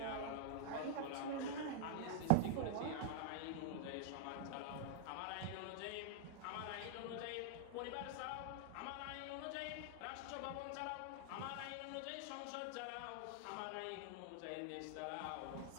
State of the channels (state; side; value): different; both; correlation -0.01